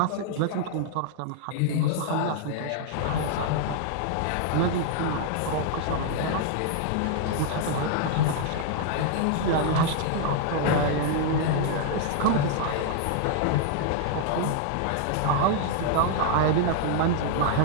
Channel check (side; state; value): both; different; correlation 0.00